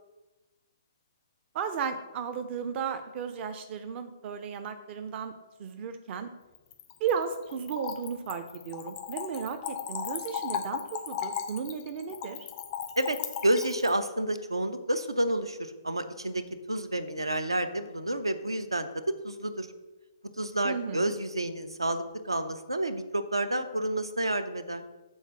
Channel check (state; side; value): inverted; both; correlation -0.68